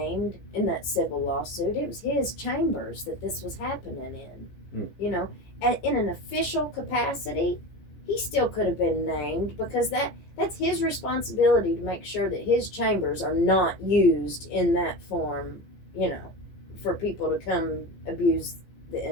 in that civil lawsuit? It was his chambers that this was happening in. You know, and in an official capacity, he still could have been named because that's his responsibility to make sure that his chambers are not used in that form, you know, for people to come abuse the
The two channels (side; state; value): right; late; 15 ms